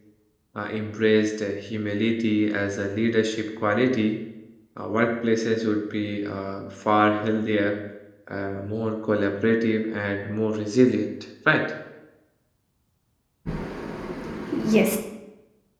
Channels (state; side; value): identical; both; correlation 1.00